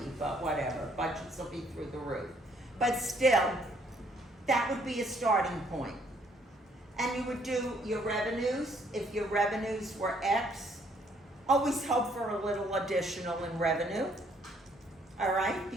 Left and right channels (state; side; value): normal; both; correlation 0.66